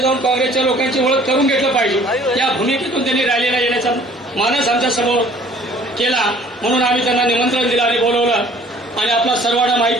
काँग्रेसच्या लोकांची ओळख करून घेतलं पाहिजे. या भूमिकेतून त्यांनी रॅलीला येण्याचा मानस आमच्या समोर केला. म्हणून आम्ही त्यांना निमंत्रण दिलं आणि बोलवलं. आणि आपला सर्वांना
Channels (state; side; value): normal; both; correlation 0.54